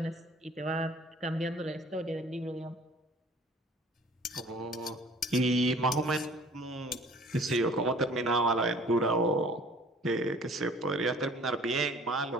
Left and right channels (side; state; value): both; normal; correlation 0.51